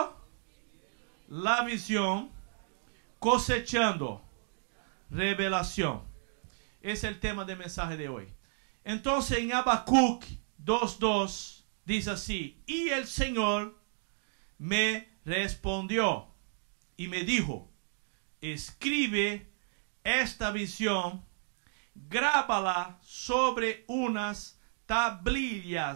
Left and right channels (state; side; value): silent; left; digital silence